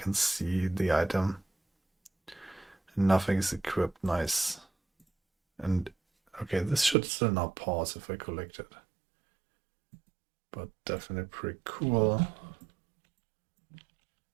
see the item. And nothing is equipped. Nice. And okay, this should still not pause if I collect it. But definitely pretty cool.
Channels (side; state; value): left; drops out; at 7.0 s